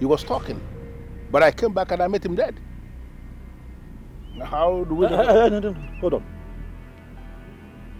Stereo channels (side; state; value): both; identical; correlation 1.00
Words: was talking. But I came back and I met him dead. How do we... No. Hold on.